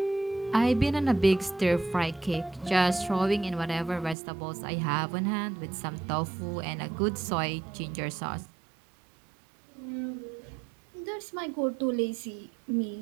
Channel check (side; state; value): left; drops out; at 4.2 s